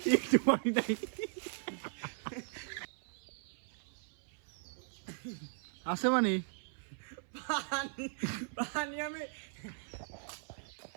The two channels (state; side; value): silent; left; 52 dB below the other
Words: একটু পানি নাই। আছে মানে পানি পানি আমি